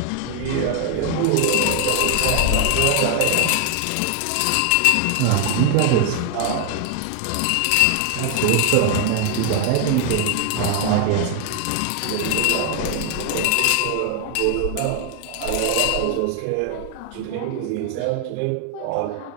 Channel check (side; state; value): both; different; correlation 0.00